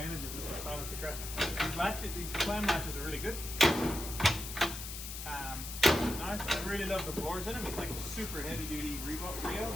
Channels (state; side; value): noise; left; hiss, 8 dB below the sound